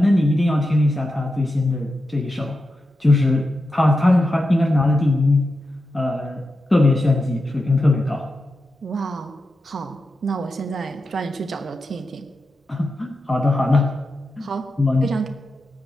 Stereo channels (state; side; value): normal; both; correlation 0.89